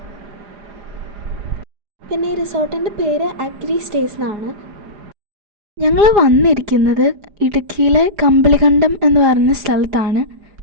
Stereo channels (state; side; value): late; left; 4.9 ms